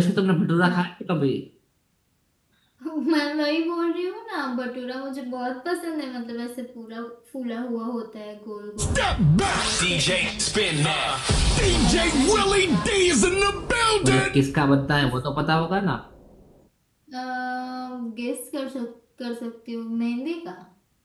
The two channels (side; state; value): both; identical; correlation 1.00